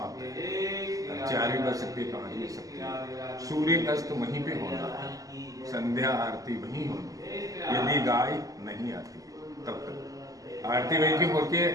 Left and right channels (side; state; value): left; late; 0.17 ms